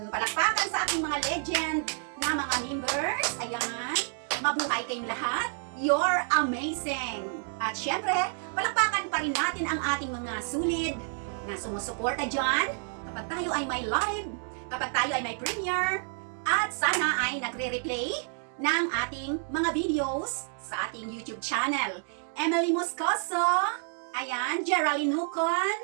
Palakpakan sa aking mga legend na mga members. Ayan, mabuhay kayong lahat. You're amazing! At syempre, palakpakan pa rin natin ang ating mga sulit na sumusuporta dyan kapag tayo ay may live, kapag tayo ay may premiere, at sana ay nagre-replay ng ating mga videos sa ating YouTube channel. Emily Moscoso, ayan, Geraldine Nucon,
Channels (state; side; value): silent; left; 58 dB below the other